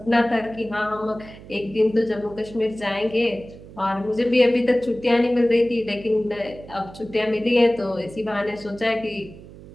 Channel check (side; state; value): right; noise; hum, 18 dB below the sound